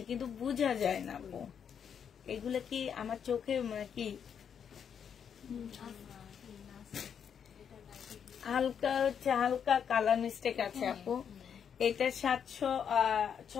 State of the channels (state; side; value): quieter; right; 7.7 dB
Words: কিন্তু বোঝা যায় না আপু। এগুলা কি আমার চোখে কি হালকা হচ্ছে, হালকা কালার মিস্টেক আছে আপু। এটা